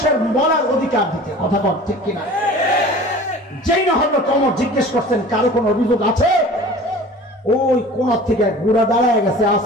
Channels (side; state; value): both; normal; correlation 0.42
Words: বলার অধিকার দিতে। কথা বল ঠিক কিনা? যেই না হলো ওমর জিজ্ঞেস করছেন, কারো কোনো অভিযোগ আছে? ওই কোন থেকে গুড়া দাঁড়ায় গেছে,